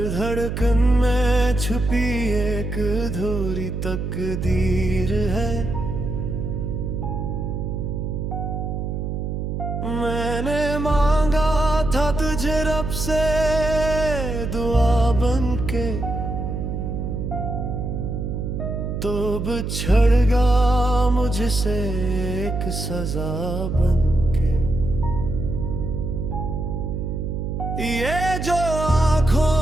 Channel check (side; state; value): right; noise; hum, 3 dB below the sound